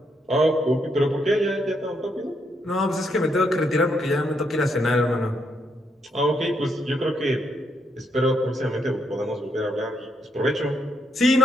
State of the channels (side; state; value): both; normal; correlation 0.77